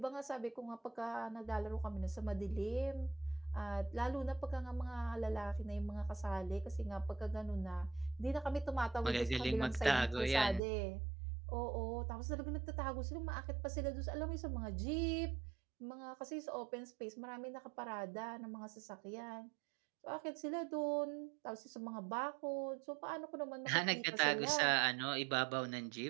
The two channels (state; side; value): drops out; left; at 10.6 s